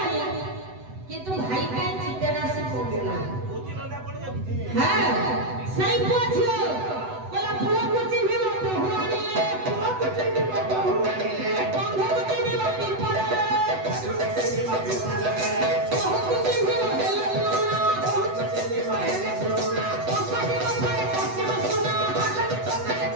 କିନ୍ତୁ ଭାଇ ପାଇଁ ଚିକେନ ଆସି ପହଞ୍ଚିଲା। ଭୋଜି ରନ୍ଧା ପଡି ଯାଉଛି। ହଁ ସେଇ ପୁଅ ଝିଅ କହିଲା ପୁଅକୁ ଚିହ୍ନିବ ବୋହୂ ଆଣିଲେ, ପୁଅକୁ ଚିହ୍ନିବ ବୋହୂ ଆଣିଲେ, ବନ୍ଧୁକୁ ଚିହ୍ନିବ ପିମ୍ପଳରେ, ବୋହୂକୁ ଚିହ୍ନିବ ପିମ୍ପଳରେ, ବୋହୂକୁ ଚିହ୍ନିବ ହେଲେ ଲୁଣା, ବୋହୂକୁ ଚିହ୍ନିବ ହେଲେ ଲୁଣା, ଅସାଧି କଥାରେ ପଶିବ ସୁନା। ଅସାଧି କଥାରେ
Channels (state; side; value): late; left; 7.9 ms